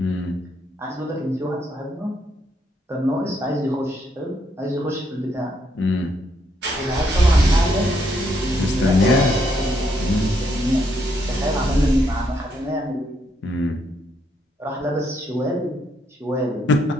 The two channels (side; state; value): both; normal; correlation 0.75